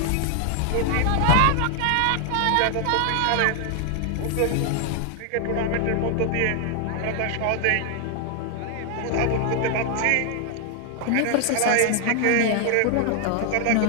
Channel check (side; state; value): both; different; correlation 0.00